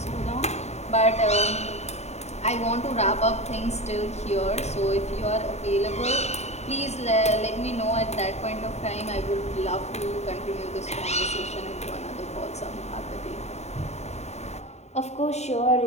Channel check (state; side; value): late; right; 0.32 ms